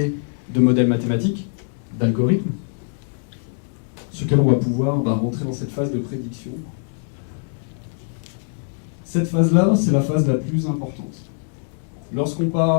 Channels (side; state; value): right; silent; digital silence